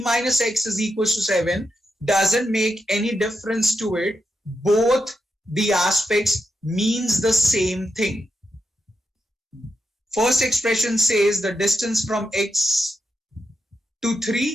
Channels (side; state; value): both; normal; correlation 0.86